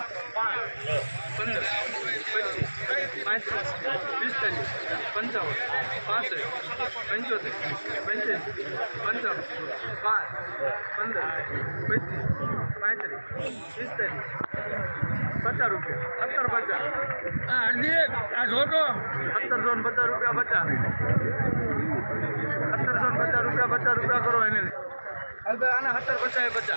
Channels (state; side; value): inverted; both; correlation -1.00